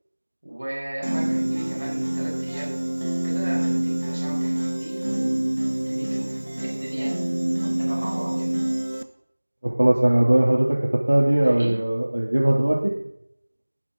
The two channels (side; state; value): both; inverted; correlation -1.00